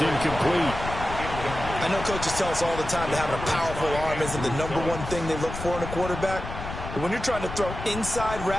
I know coaches tell us all the time that having a powerful arm isn't the #1 thing they look for in a quarterback, But when you're trying to throw inside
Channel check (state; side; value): noise; left; rumble, 8 dB below the sound